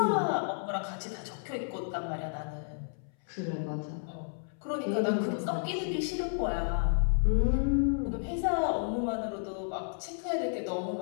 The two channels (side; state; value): right; silent; 57 dB below the other